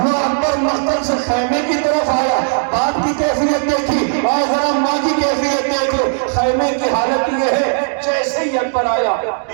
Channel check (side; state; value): left; silent; digital silence